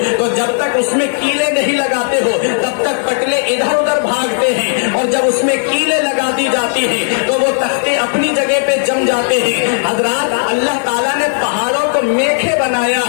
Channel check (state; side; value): silent; right; 70 dB below the other